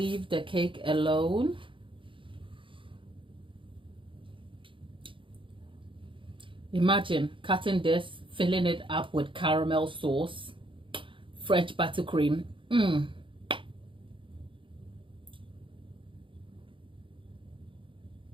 the cake alone. Imagine cutting this, filling it up with caramel sauce, French buttercream.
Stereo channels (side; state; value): left; late; 0.25 ms